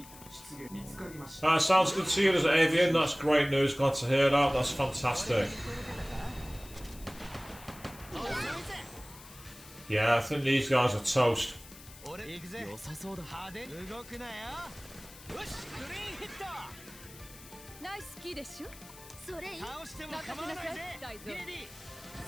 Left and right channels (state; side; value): noise; left; hiss, 19 dB below the sound